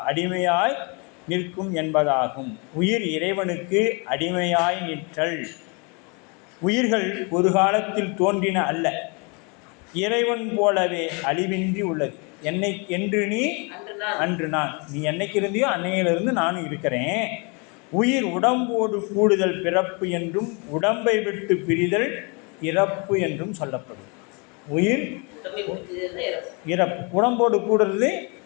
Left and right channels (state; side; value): quieter; right; 32.3 dB